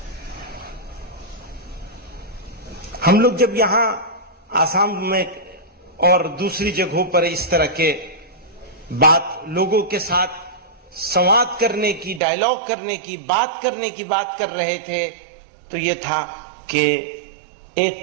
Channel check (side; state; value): left; drops out; at 12.2 s